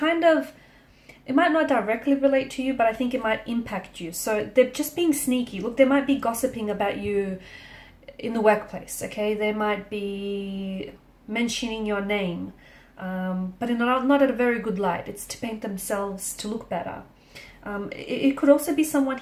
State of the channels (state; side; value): identical; both; correlation 1.00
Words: might not directly relate to you, but I think it might impact you. So they're just being sneaky. Look, they might be gossiping about you in the workplace, okay? They might be mentioning your name, but not at a very good light. It's to paint themselves to look better. It could also be someone